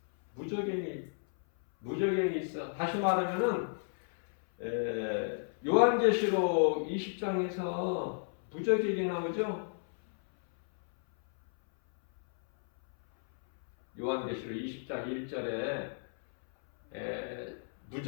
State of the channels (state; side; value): silent; right; 56 dB below the other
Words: 무적행이 있어. 다시 말하면은 요한계시록 20장에서 무적행이 나오죠? 요한계시록 20장 1절에